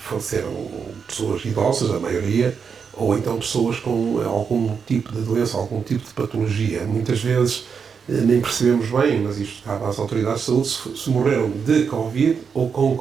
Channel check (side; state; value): left; quieter; 6.2 dB